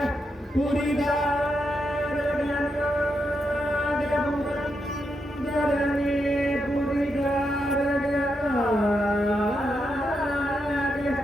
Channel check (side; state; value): both; normal; correlation 0.83